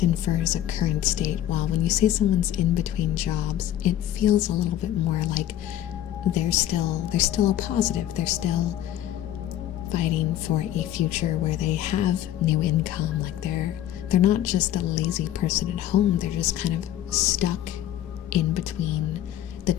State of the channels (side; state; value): right; quieter; 12.2 dB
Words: infers a current state, while when you say someone's in between jobs, it feels a little bit more like they're still a positive. They're still fighting for a future where they have new income. Like they're not just a lazy person at home. They're just kind of stuck in between the